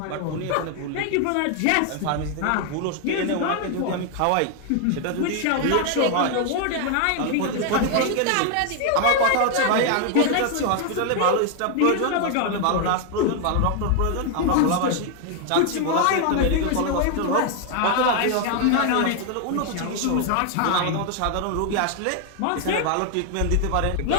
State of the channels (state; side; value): different; both; correlation 0.00